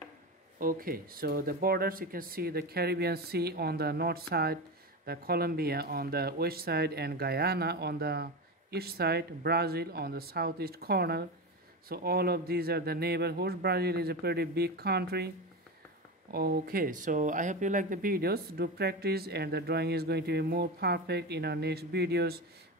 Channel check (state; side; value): normal; both; correlation 0.21